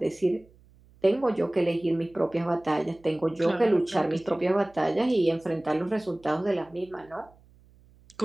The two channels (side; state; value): right; noise; hum, 28 dB below the sound